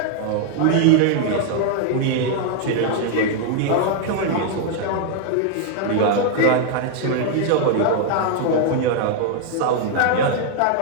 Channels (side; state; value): both; different; correlation 0.00